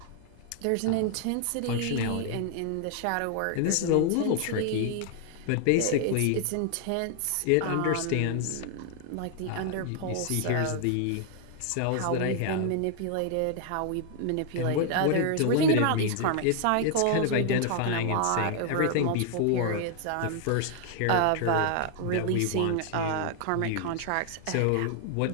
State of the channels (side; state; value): both; different; correlation 0.00